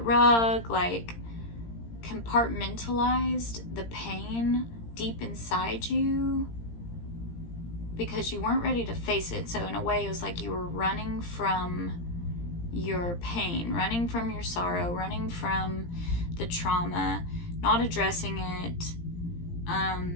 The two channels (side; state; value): right; late; 17 ms